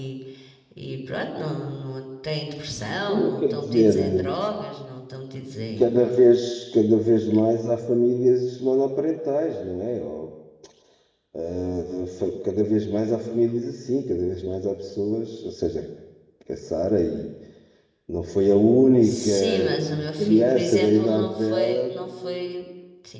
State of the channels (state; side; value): identical; both; correlation 1.00